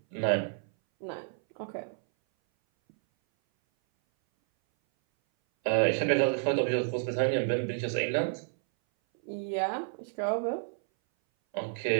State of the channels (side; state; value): left; silent; 58 dB below the other